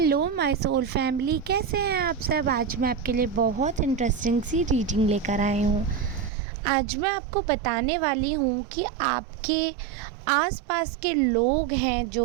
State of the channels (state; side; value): drops out; left; at 6.3 s